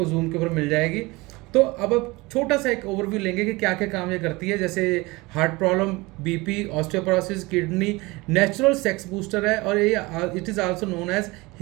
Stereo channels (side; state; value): left; quieter; 22.9 dB